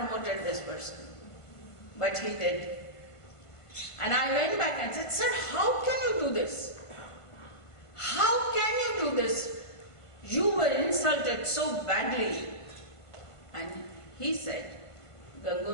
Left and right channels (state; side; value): late; right; 1.5 ms